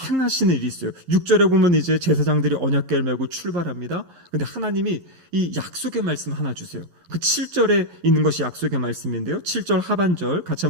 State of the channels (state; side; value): late; left; 11 ms